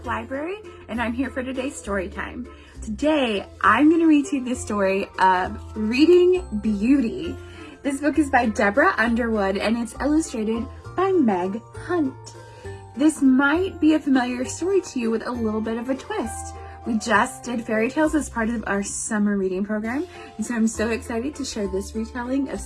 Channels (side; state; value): both; identical; correlation 1.00